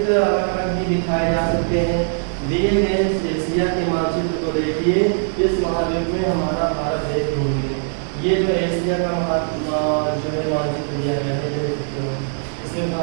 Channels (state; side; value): silent; left; 65 dB below the other